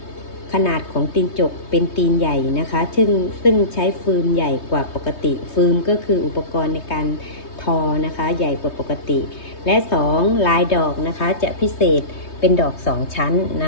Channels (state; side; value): late; right; 3.2 ms